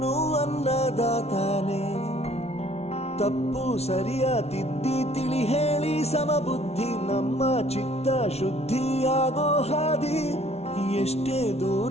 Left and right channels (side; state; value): right; late; 0.31 ms